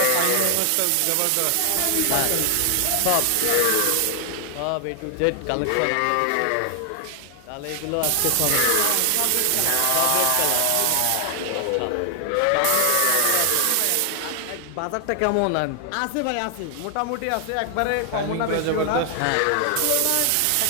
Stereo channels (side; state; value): both; different; correlation 0.00